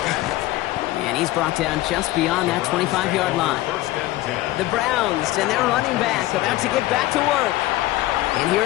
And he's brought down just beyond that 25-yard line. The Browns and their running back about to get back to work. And here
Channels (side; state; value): right; quieter; 16.8 dB